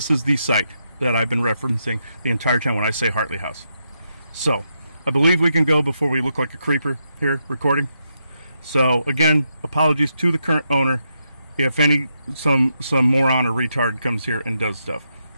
site that I've been referencing the entire time when I say Hartley House. So I believe we can go before we look like a creeper here recording. So again, apologies to the current owner if some moron or retard comes here and does stuff.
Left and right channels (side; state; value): both; inverted; correlation -0.82